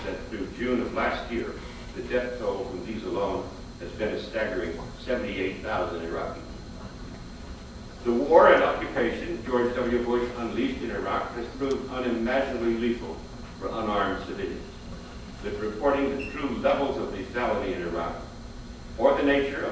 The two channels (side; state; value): both; identical; correlation 1.00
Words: that through June of last year, the death toll from these alone has been a staggering 78,000 Iraqis. The war and occupation George W. Bush unleashed in Iraq has proved unimaginably lethal for unarmed civilians. But reporting the true levels of lethality in Iraq, or the nature